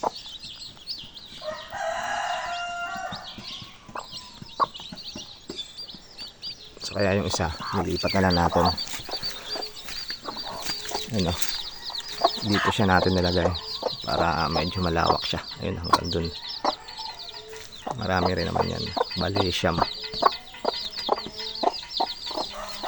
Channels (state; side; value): identical; both; correlation 1.00